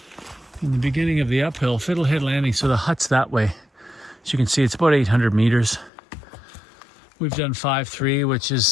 and the beginning of the uphill. Fiddlehead Landing, so the hut's that way. As you can see, it's about 800 meters. We've done 5.3, which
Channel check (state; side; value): drops out; right; at 5.9 s